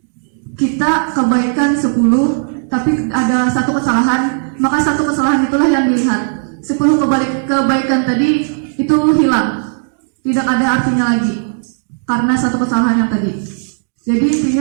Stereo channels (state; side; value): silent; left; 64 dB below the other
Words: kita kebaikan 10, tapi ada satu kesalahan, maka satu kesalahan itulah yang dilihat. 10 kebaikan tadi itu hilang, tidak ada artinya lagi, karena satu kesalahan yang tadi. Jadi